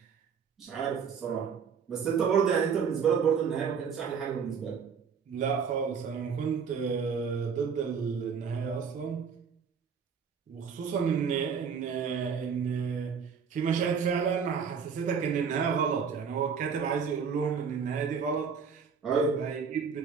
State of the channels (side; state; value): left; quieter; 6.4 dB